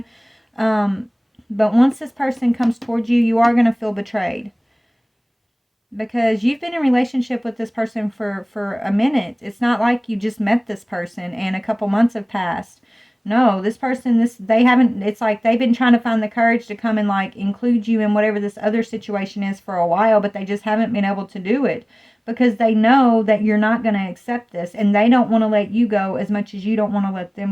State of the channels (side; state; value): both; identical; correlation 1.00